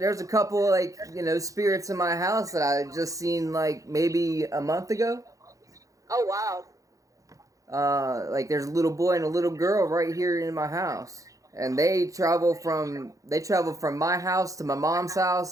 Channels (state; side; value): late; left; 0.16 ms